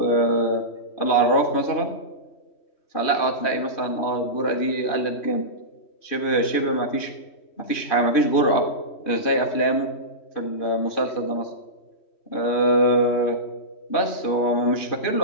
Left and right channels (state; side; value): late; right; 3.1 ms